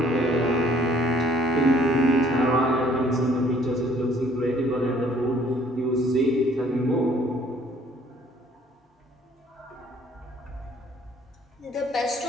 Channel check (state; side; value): normal; both; correlation 0.59